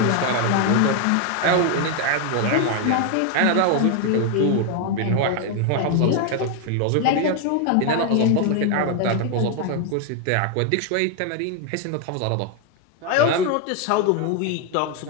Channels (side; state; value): both; different; correlation 0.01